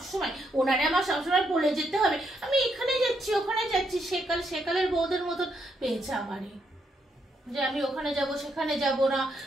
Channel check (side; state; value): both; normal; correlation 0.77